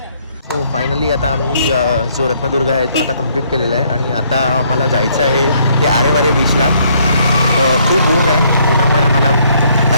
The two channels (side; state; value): both; inverted; correlation -0.67